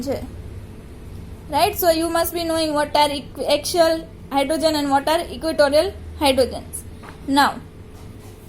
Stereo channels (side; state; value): both; identical; correlation 1.00